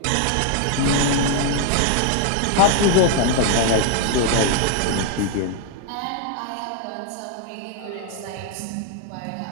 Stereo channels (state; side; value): different; both; correlation 0.00